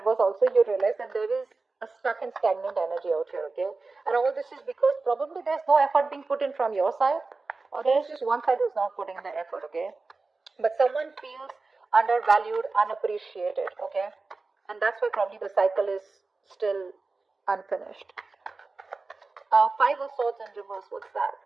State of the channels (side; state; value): left; quieter; 3.8 dB